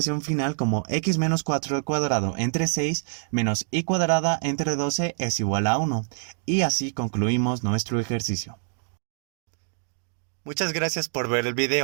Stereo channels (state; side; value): silent; left; digital silence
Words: final como x menos 4 al cuadrado entre 6 menos y cuadrada entre 12 es igual a 1. Y así concluimos nuestro ejercicio. Muchas gracias por ver el